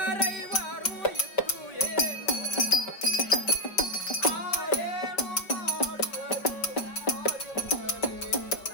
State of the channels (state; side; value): late; right; 5.5 ms